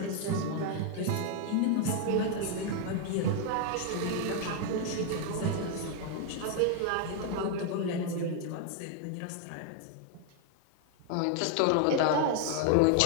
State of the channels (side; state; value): both; different; correlation 0.00